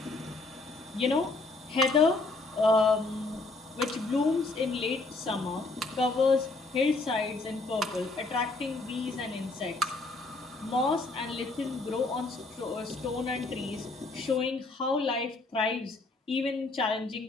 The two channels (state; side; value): quieter; right; 3.3 dB